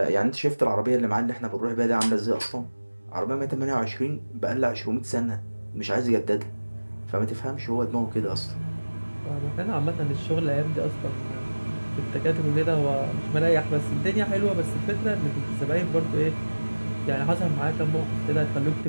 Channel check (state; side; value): inverted; both; correlation -1.00